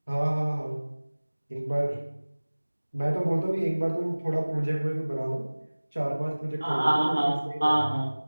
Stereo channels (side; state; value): both; inverted; correlation -1.00